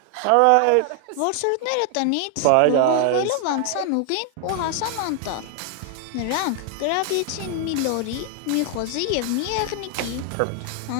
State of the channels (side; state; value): both; different; correlation 0.00